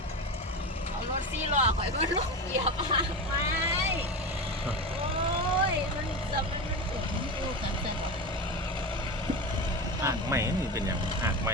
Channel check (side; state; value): both; normal; correlation 0.24